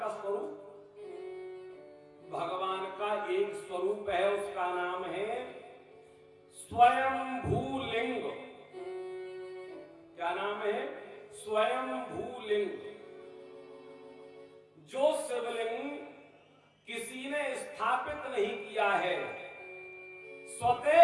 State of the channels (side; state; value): both; identical; correlation 1.00